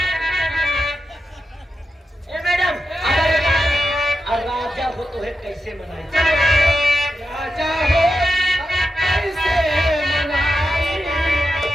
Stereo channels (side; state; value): both; normal; correlation 0.89